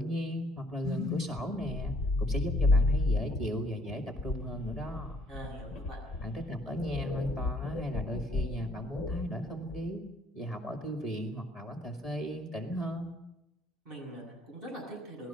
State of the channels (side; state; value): both; normal; correlation 0.64